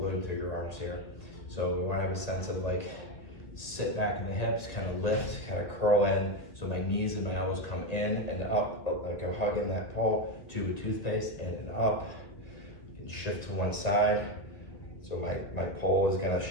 through your arms here. So we want to have a sense of like, sit back in the hips, kind of lift, kind of curl in. So my knees and my elbows come in and up, like I'm hugging that pole, tube of toothpaste, in and up. You can shift to one side. So my pole is gonna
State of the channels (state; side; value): late; right; 1.9 ms